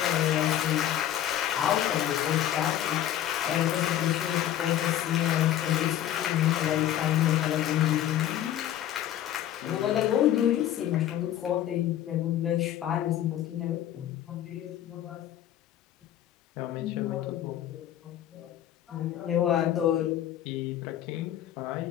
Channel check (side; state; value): right; quieter; 11.7 dB